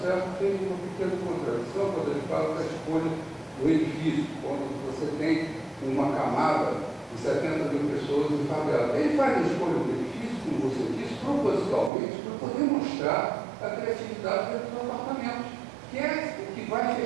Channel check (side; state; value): left; drops out; at 11.9 s